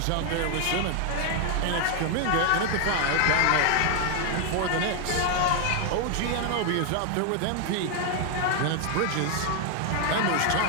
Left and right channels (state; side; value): different; both; correlation 0.00